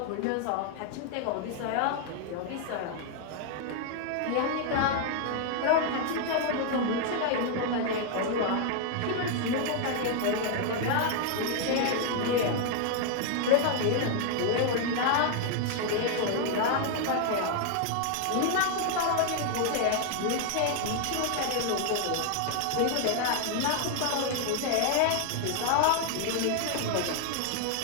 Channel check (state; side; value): different; both; correlation 0.00